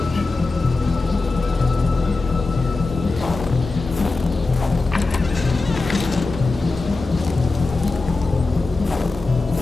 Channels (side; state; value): right; quieter; 3.5 dB